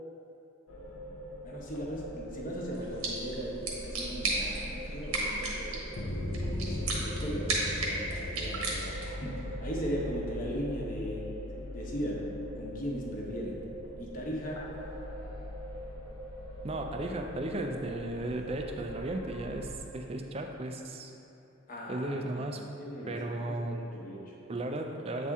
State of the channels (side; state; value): both; normal; correlation 0.45